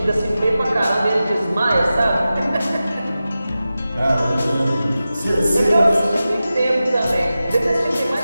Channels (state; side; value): inverted; both; correlation -0.94